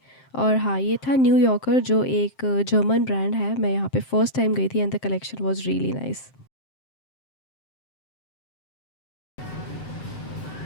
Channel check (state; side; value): late; right; 7.6 ms